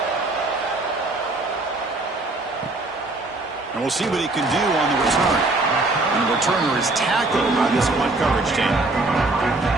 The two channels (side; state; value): left; quieter; 3.0 dB